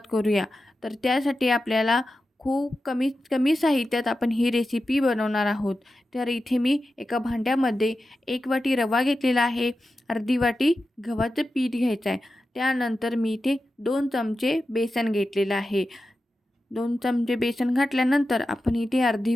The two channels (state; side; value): normal; both; correlation 0.92